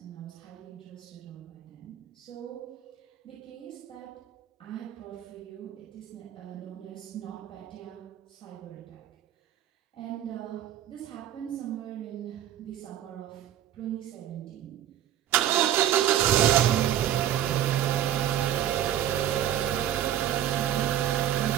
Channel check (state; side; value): quieter; left; 11.6 dB